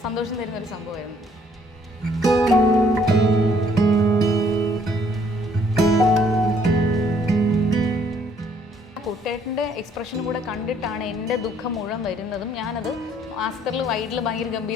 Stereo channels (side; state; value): both; normal; correlation 0.64